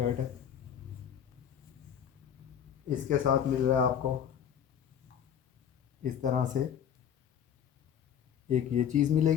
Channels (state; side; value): quieter; right; 8.9 dB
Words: है। इसके साथ मिल रहा है आपको इस तरह से एक ये चीज़